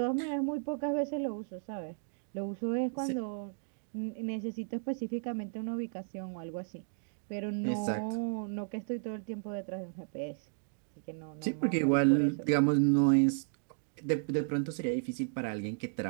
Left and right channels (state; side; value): silent; left; digital silence